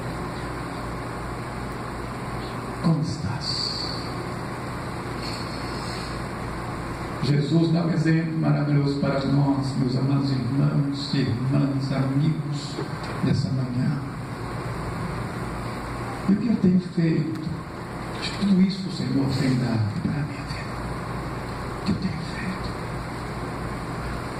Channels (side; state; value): both; identical; correlation 1.00